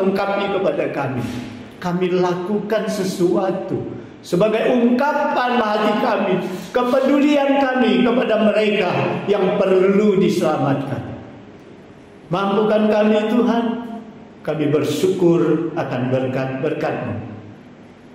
kepada kami lakukan sesuatu sebagai ungkapan hati kami, kepedulian kami kepada mereka yang perlu diselamatkan. Mampukan kami Tuhan, kami bersyukur akan berkat-berkat-Mu.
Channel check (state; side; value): identical; both; correlation 1.00